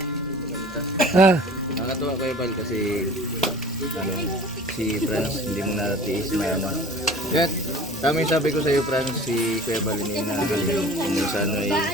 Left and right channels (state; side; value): normal; both; correlation 0.44